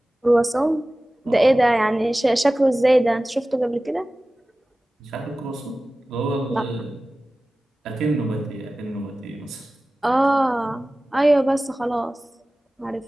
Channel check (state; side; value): normal; both; correlation 0.97